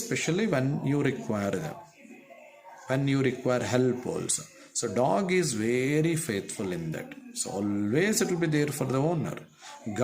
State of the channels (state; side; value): identical; both; correlation 1.00